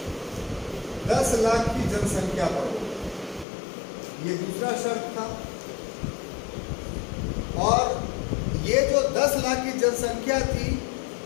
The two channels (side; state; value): right; drops out; at 3.5 s